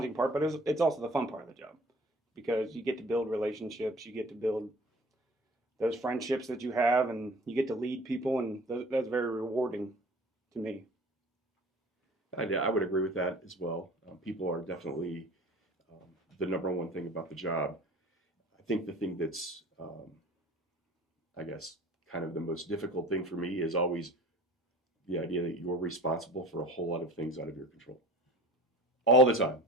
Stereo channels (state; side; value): normal; both; correlation 0.44